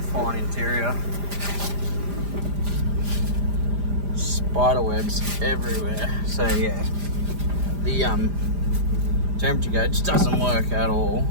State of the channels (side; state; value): left; late; 5.0 ms